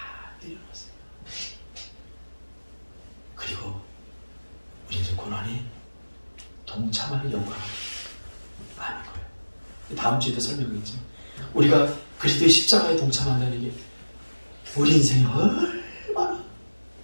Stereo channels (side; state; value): both; inverted; correlation -1.00